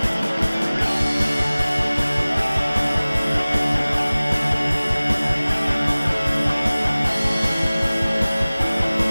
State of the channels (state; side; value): inverted; both; correlation -0.99